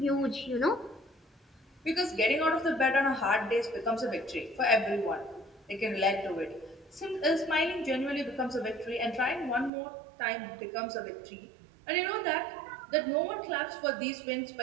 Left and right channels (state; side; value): drops out; left; at 9.7 s